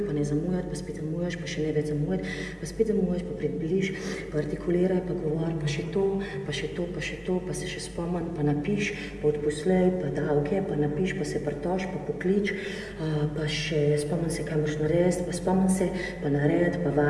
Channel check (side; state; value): both; identical; correlation 1.00